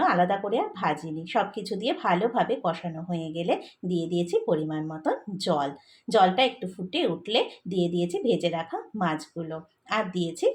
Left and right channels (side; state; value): both; identical; correlation 1.00